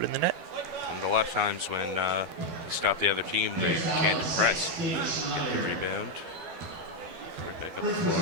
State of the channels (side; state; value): left; late; 12 ms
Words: it in the net. And a lot of times when you stop the other team, they can't press. Get the rebound. Right back up the